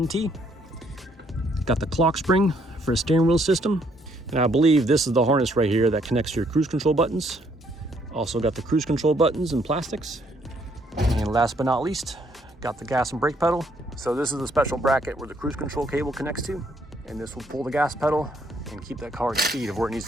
Got the clock spring for a steering wheel system. And I believe this is the harness right here that connects to your cruise control buttons. Also got the cruise control buttons and plastics. And last but not least, got the gas and brake pedal. So this is a special bracket where the cruise control cable connects to, and this will pull the gas pedal and keep that car at speed of where it needs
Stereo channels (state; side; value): normal; both; correlation 0.68